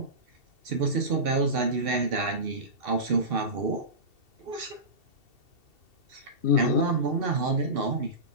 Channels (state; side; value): late; left; 2.7 ms